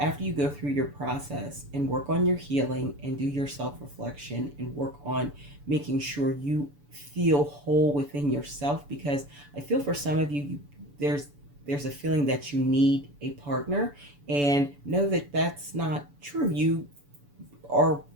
you go through your process and work on your healing and do your self-reflection and work on making sure you feel whole within yourself, because I feel for some of you, there's a feeling that you need a partner, and know that that's not true. You are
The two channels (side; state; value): left; late; 7.0 ms